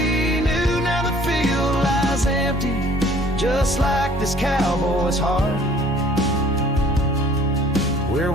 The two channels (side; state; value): both; normal; correlation 0.55